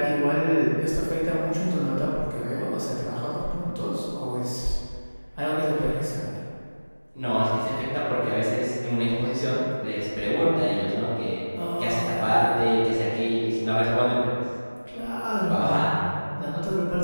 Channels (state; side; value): inverted; both; correlation -1.00